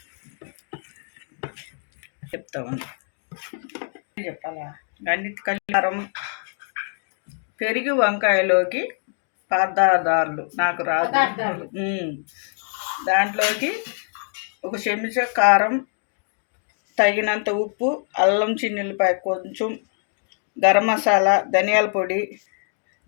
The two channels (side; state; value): right; silent; 63 dB below the other